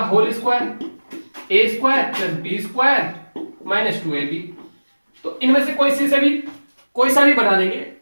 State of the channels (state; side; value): inverted; both; correlation -1.00